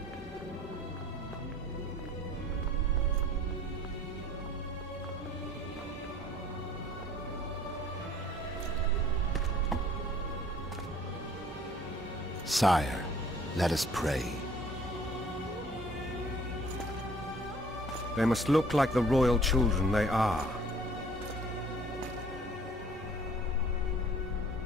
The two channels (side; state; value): both; normal; correlation 0.54